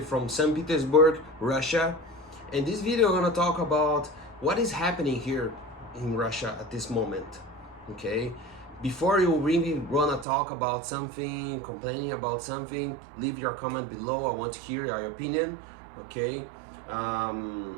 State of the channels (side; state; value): left; drops out; at 10.2 s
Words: from St. Petersburg, Russia. In this video, I'm gonna talk about what is happening here in Russia at this moment. Okay, before you really wanna talk about something, complaining about something, leave your comment below. I want to hear your opinion. Okay,